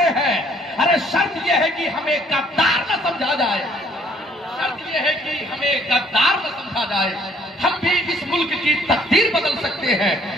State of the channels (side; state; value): both; normal; correlation 0.62